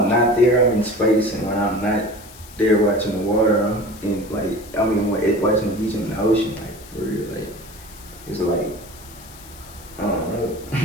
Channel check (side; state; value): left; noise; hiss, 20 dB below the sound